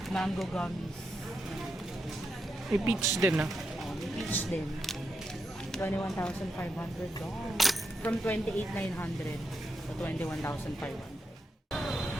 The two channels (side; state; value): both; normal; correlation 0.85